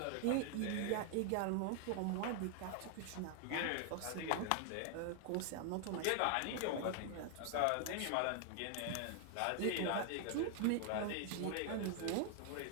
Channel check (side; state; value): both; different; correlation 0.00